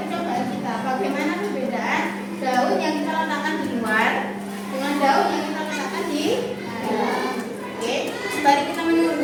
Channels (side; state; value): both; identical; correlation 1.00